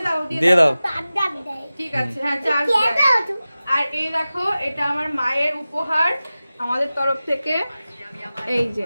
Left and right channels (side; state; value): both; inverted; correlation -0.96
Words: দাও, দিয়ে দাও। তার ডাক দেয়। ঠিক আছে, হ্যাঁ চার্জ কে দেয়। দাও তো? আর এই দেখো, এটা আমার মায়ের উপহার আমাদের তরফ থেকে। এই যে